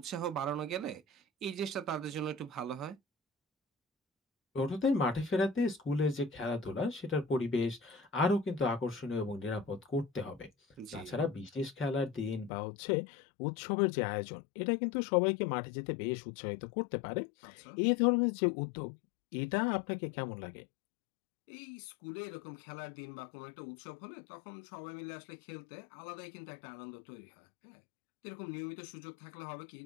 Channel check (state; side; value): drops out; right; at 12.5 s